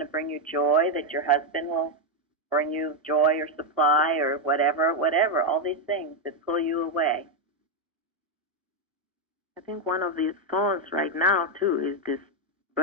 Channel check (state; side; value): normal; both; correlation 0.03